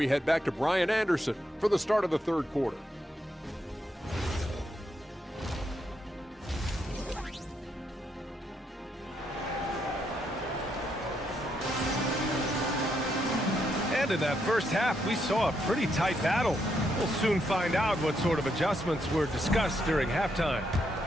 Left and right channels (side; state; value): both; normal; correlation 0.78